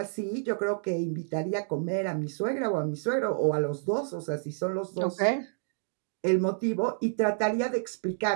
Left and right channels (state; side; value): silent; left; digital silence